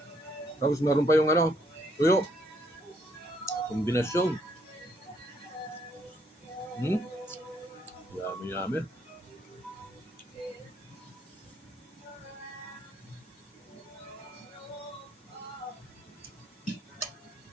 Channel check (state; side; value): normal; both; correlation 0.70